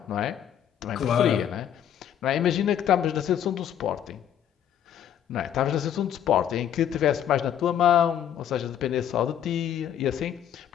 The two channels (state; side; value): quieter; right; 9.9 dB